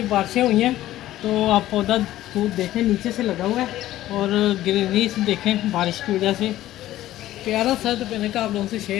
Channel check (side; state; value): right; quieter; 14.4 dB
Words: बारिशें हुई हैं तो आप पौधा दूर देखें नीचे से लगा हुआ है, और ग्रीनरी से देखें बारिश की वजह से प्यारा सा। तो मैंने कहा आप लोगों से